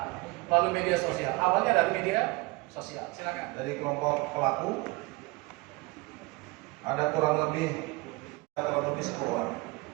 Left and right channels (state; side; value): quieter; left; 24.1 dB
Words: melalui media sosial. Awalnya dari media sosial. Silakan. Dari kelompok pelaku ada kurang lebih 10 orang